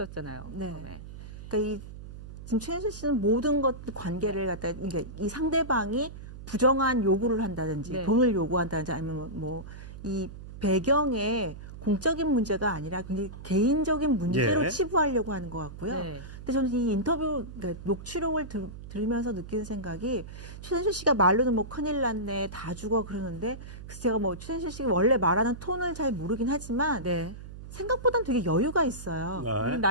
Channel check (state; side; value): noise; right; hum, 13 dB below the sound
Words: 네. 처음에. 그러니까 지금 최순실 씨는 모든 것 관계를 갖다 그러니까 이 상대방이 부정한 요구를 한다든지 네. 돈을 요구한다든지 아니면 뭐 이 배경에 공적인 문제가 아니라 굉장히 개인적인 문제로 예. 치부하려고 하는 것 같고요. 네. 근데 저는 이 인터뷰 그러니까 녹취록을 들으면서 느끼는 생각이 최순실 씨가 말로는 뭐 큰일 났네 다 죽어 그러는데 그래서 제가 뭐 최순실 씨가 원래 말하는 톤을 잘 모르긴 하지만 네. 생각보다는 되게 여유가 있어요. 네.